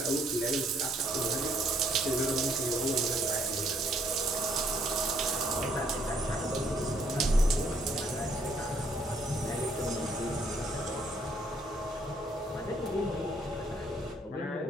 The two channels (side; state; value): both; normal; correlation 0.68